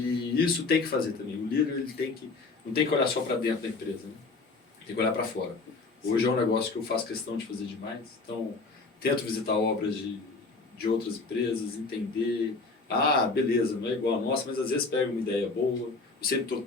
isso tem que fazer também. O líder ele não tem que olhar só para dentro da empresa, né? Tem que olhar para fora. Hoje é um negócio que eu faço questão de fazer demais. Então, tento visitar obras de outras empresas, entender. Ah, beleza, não é igual a nossa, mas às vezes pega uma ideia boa. Eu sempre estou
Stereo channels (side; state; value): right; quieter; 3.9 dB